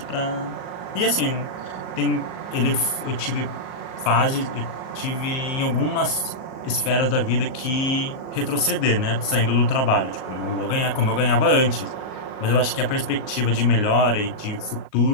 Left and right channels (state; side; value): late; right; 38 ms